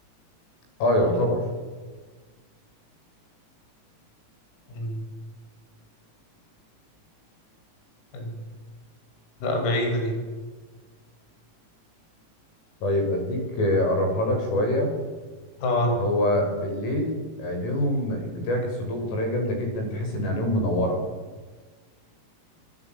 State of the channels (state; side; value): late; right; 18 ms